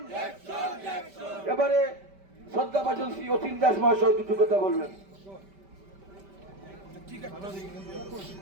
এবারে শ্রদ্ধাভাজন শ্রী অতীন দাস মহাশয় দুটো কথা বলবেন।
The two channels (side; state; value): left; late; 5.1 ms